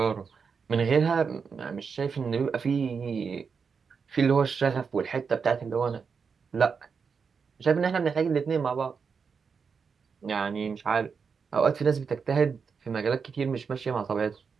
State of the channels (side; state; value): left; quieter; 5.8 dB